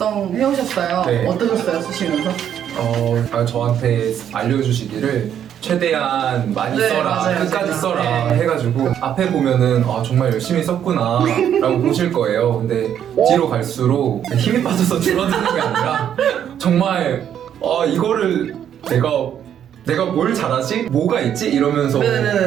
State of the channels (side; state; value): left; quieter; 9.5 dB